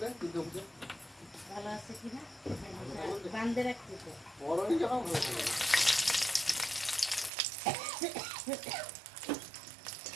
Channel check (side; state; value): left; drops out; at 7.3 s